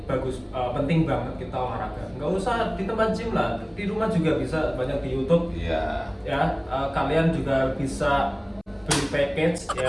bagus, penting banget kita olahraga. Nggak usah di tempat gym lah, di rumah juga bisa, banyak di YouTube. Iya. Ya, kalian juga bisa beli package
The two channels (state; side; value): identical; both; correlation 1.00